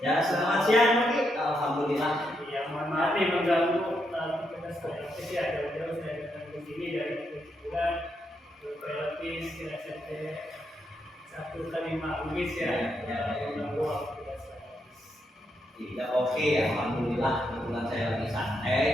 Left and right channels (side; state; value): both; normal; correlation 0.80